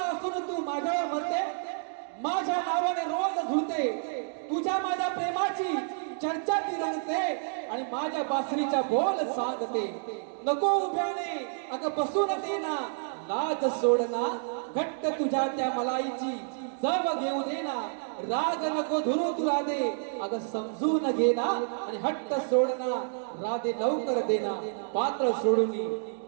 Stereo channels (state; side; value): silent; left; digital silence